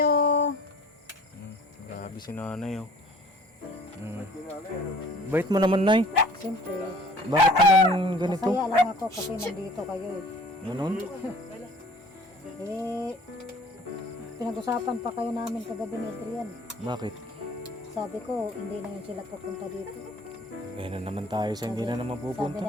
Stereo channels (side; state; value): both; normal; correlation 0.50